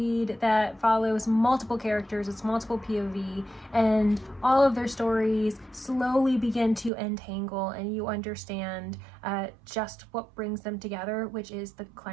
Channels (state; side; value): drops out; left; at 6.9 s